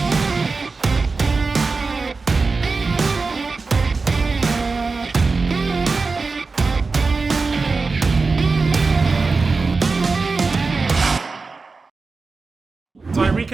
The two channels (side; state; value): left; quieter; 4.1 dB